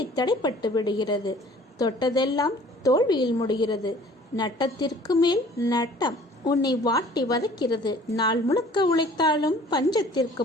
தடைப்பட்டு விடுகிறது. தொட்டதெல்லாம் தோல்வியில் முடிகிறது. நட்டத்திற்கு மேல் நட்டம் உன்னை வாட்டி வதைக்கிறது. நாள் முழுக்க உழைத்தாலும் பஞ்சத்திற்கு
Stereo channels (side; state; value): both; normal; correlation 0.51